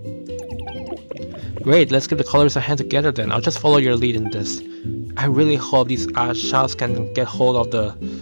Great, let's give the colors a hand together then. I'll just follow your lead in this. I really hope these Ashas can get hold of the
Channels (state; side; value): inverted; both; correlation -1.00